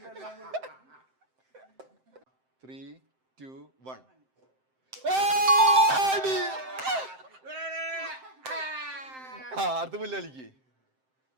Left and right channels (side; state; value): left; late; 7.7 ms